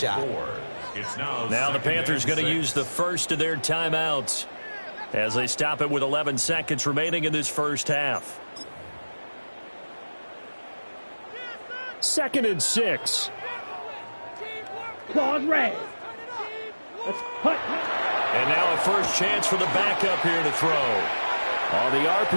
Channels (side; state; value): both; inverted; correlation -1.00